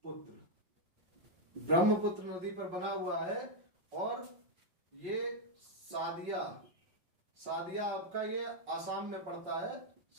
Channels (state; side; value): late; left; 5.6 ms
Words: ब्रह्मपुत्र नदी पर बना हुआ है। और ये सादिया आपका ये आसाम में पड़ता है।